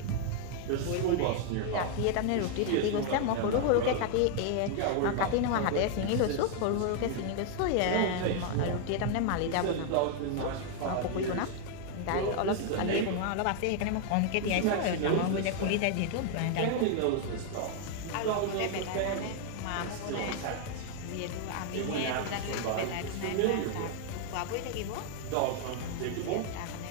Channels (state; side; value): different; both; correlation 0.00